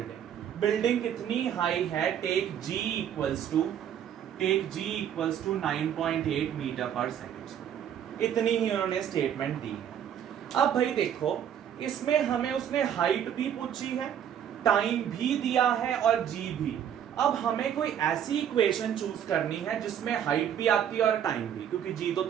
Building कितनी हाई है? Take g equals to 9.8 metre पर सेकेंड. इतनी ही उन्होंने स्टेटमेंट दी. अब भाई देखो इसमें हमें उसने हाइट भी पूछी है, टाइम भी दिया है और g भी. अब हमें कोई ऐसी इक्वेशन चूज करनी है जिसमें हाइट भी आती है और टाइम भी, क्योंकि g तो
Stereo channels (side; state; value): left; quieter; 9.4 dB